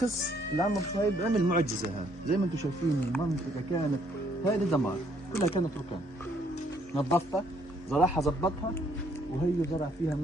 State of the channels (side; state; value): both; normal; correlation 0.67